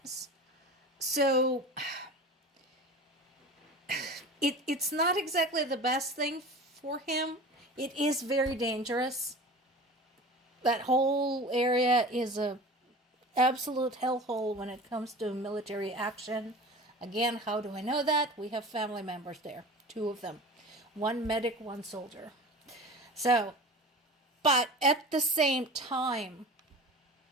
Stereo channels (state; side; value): normal; both; correlation 0.36